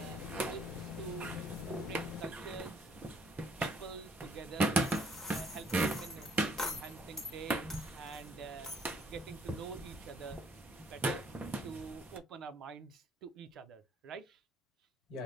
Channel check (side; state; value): both; normal; correlation 0.64